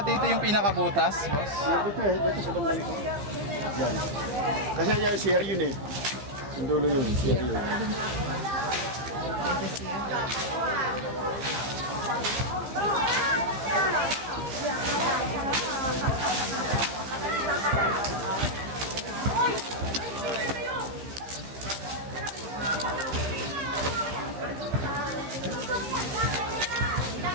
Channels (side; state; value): left; late; 15 ms